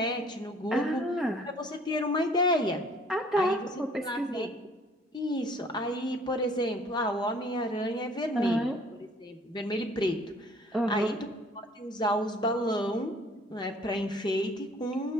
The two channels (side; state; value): both; normal; correlation 0.56